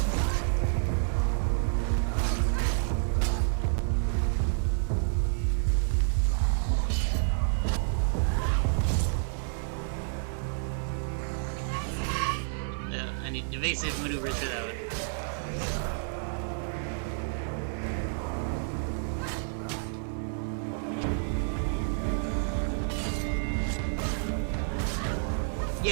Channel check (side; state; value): left; silent; 58 dB below the other